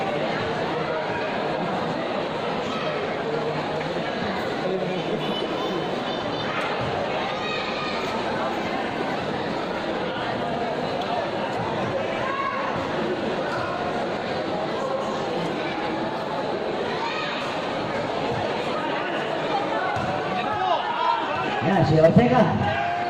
Yan, si Ortega.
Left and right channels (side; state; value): both; identical; correlation 1.00